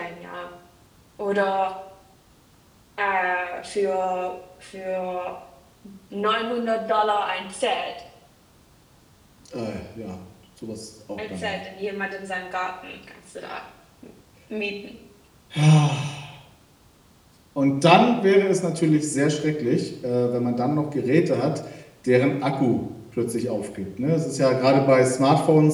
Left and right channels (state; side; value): identical; both; correlation 1.00